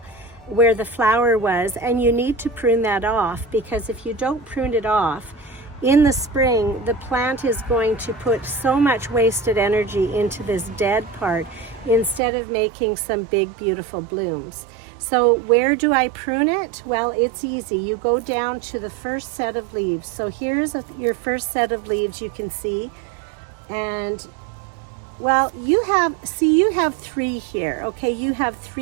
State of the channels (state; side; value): drops out; left; at 12.2 s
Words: where the flower was, and you need to prune that off, because if you don't prune it off in the spring, the plant is going to put so much wasted energy into this dead part instead of making some big beautiful blooms. So where do I prune it? Well, it's easy. You go down to the first set of leaves. So here's your first set of leaves, you can see, and well, you have three here, okay? You have